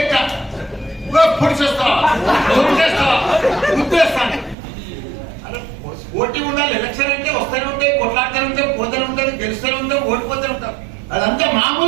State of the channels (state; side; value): drops out; left; at 4.5 s